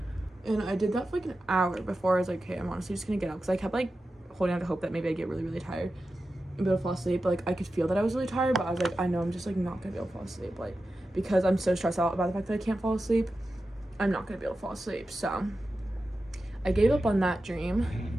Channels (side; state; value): both; normal; correlation 0.92